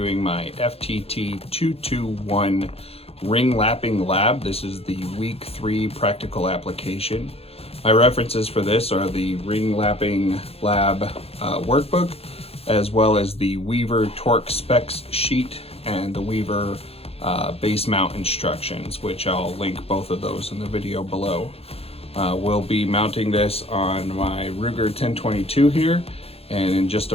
my FTT 221 ring lapping lab. This is the week 3 practical application. My references for this are the ring lapping lab workbook, as well as the Weaver torque specs sheet and the Weaver base mount instructions, which I'll link both of those in the video below. We'll be mounting this on my Ruger 1022 here, and in just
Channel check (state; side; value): late; right; 0.29 ms